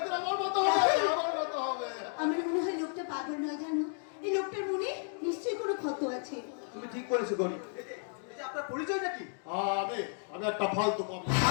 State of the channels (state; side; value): silent; right; 56 dB below the other